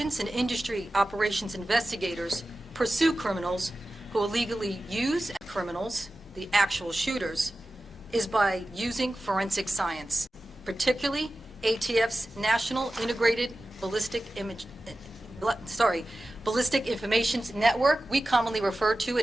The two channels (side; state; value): both; normal; correlation 0.95